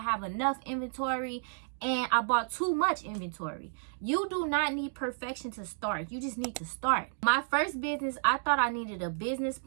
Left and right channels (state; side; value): silent; left; digital silence